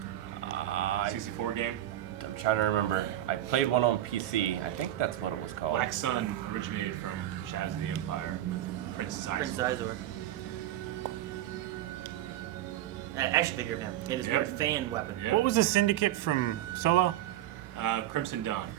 64 game? I'm trying to remember. I played one on PC. I think that's what it was called. Black Sun originated from Shadows of the Empire with Prince Izor. Action figure of him. He had his weird fan weapon. Yep. What was the syndicate from Solo? Crimson Dawn.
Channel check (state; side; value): quieter; left; 13.1 dB